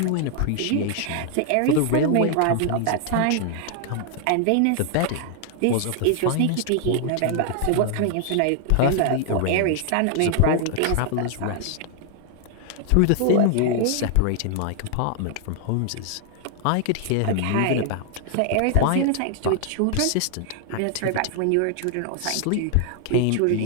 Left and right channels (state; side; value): different; both; correlation 0.00